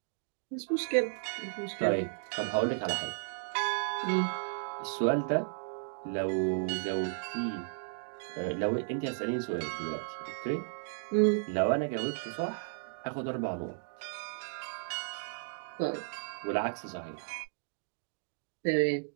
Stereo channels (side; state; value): left; silent; digital silence